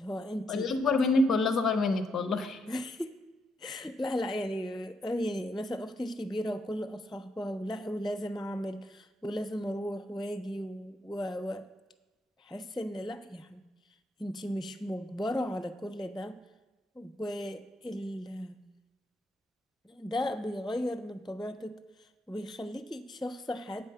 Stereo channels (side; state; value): both; normal; correlation 0.79